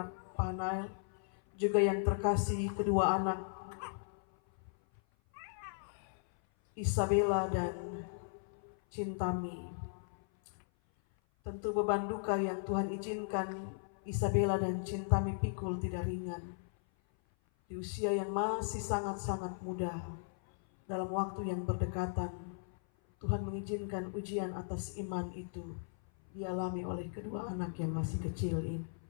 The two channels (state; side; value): silent; right; 53 dB below the other